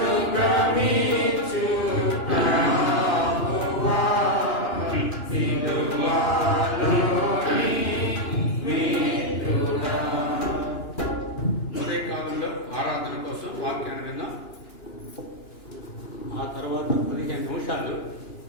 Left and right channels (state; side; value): late; right; 2.9 ms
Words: భ్రమించు ప్రభువా, సిలువలోని మిత్రుడా. ఉదయకాలంలో ఆరాధన కోసం వాక్యాన్ని విందాం. ఆ తర్వాత 15 నిమిషాలు